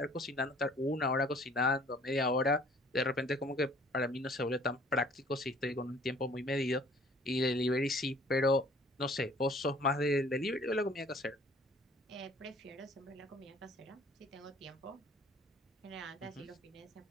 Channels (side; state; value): both; normal; correlation 0.55